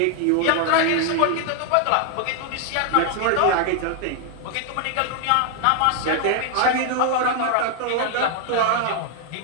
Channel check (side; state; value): both; different; correlation 0.00